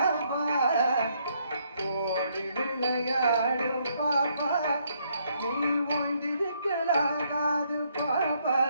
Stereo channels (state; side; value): inverted; both; correlation -0.71